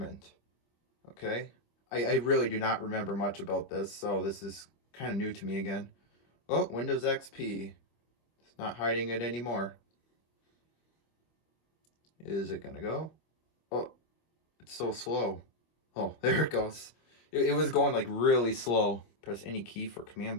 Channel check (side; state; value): right; late; 25 ms